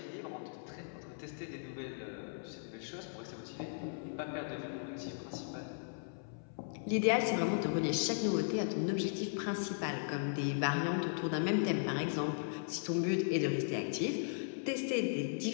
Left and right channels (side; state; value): right; silent; 53 dB below the other